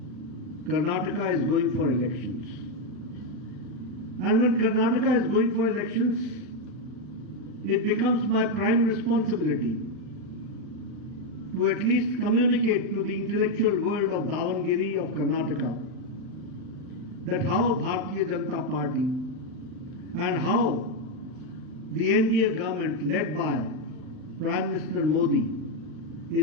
Karnataka is going for elections. And when Karnataka is going for elections, it becomes my prime responsibility to at least communicate to the intellectual world of Davanagere, of Karnataka, that how Bharatiya Janata Party and how the NDA government led by Prime Minister Modi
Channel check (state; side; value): late; left; 39 ms